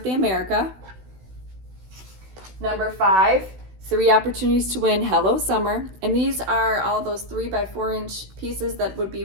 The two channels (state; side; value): late; left; 16 ms